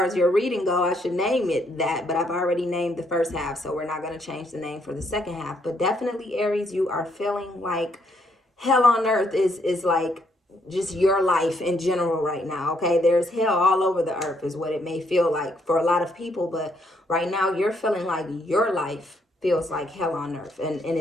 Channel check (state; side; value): normal; both; correlation 0.72